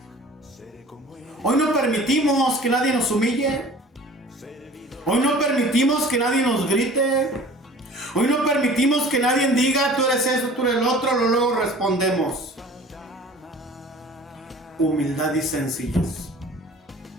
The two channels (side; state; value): both; normal; correlation 0.45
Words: Hoy no permitimos que nadie nos humille. Hoy no permitimos que nadie nos grite. Hoy no permitimos que nadie diga, tú eres eso, tú eres el otro, luego respondemos. Humildad y sencillez.